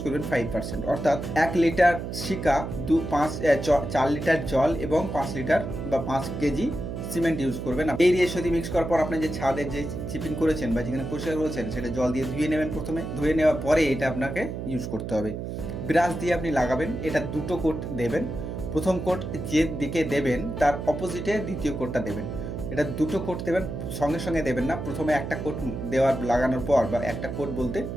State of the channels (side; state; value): right; noise; hum, 6 dB below the sound